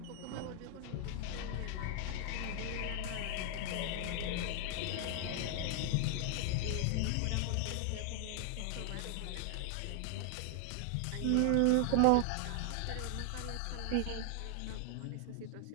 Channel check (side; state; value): both; different; correlation 0.00